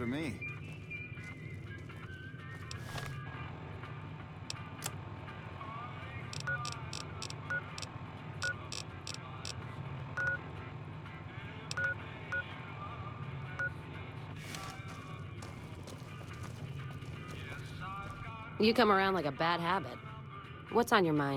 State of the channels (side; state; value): both; identical; correlation 1.00